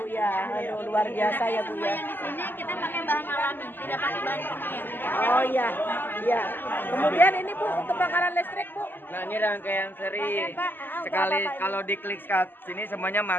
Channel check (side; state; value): right; late; 0.094 ms